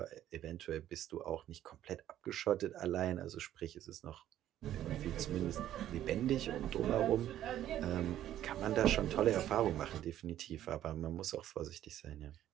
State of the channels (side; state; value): left; quieter; 12.2 dB